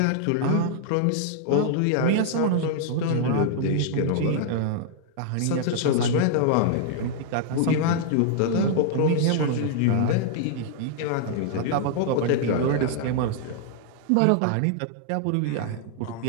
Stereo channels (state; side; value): different; both; correlation -0.01